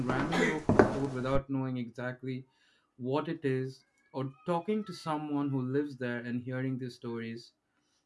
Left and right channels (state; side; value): identical; both; correlation 1.00